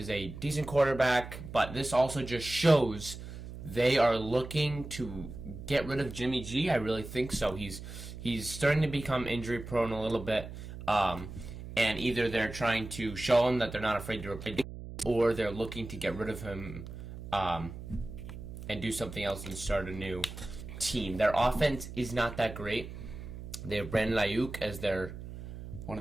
a decent quarterback, but this also just shows they are looking to get rid of Jimmy G. I really think so. He's starting to become injury prone a little bit, and either they're trying to show him that they're not afraid to replace him, or they're looking to get rid of him and do something else and start a new team. Their offense is not that great. They have Brandon Ayuk as one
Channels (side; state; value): right; noise; hum, 11 dB below the sound